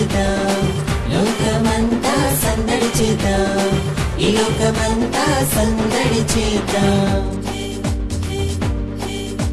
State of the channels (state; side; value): identical; both; correlation 1.00